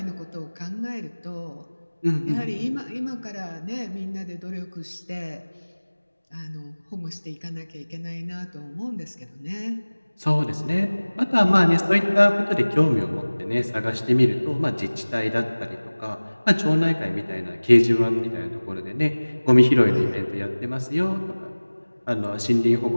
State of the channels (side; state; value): both; inverted; correlation -1.00